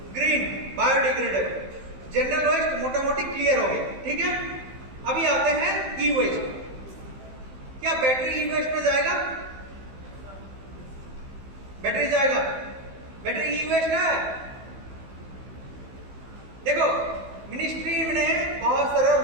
Green, biodegradable. जनरल वेस्ट मोटा मोटी क्लियर हो गया, ठीक है। अभी आते हैं ई वेस्ट। क्या बैटरी ई वेस्ट में जाएगा? बैटरी जाएगा? बैटरी ई वेस्ट है। देखो मिनिस्ट्री ने बहुत सारे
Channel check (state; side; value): late; left; 15 ms